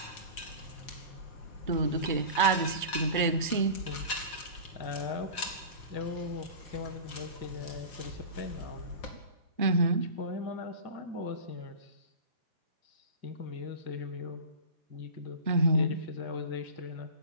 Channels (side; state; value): both; inverted; correlation -0.34